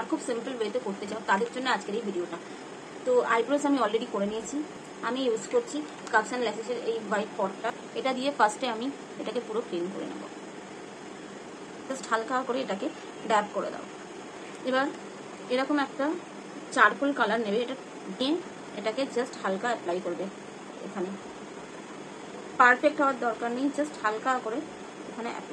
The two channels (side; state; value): both; identical; correlation 1.00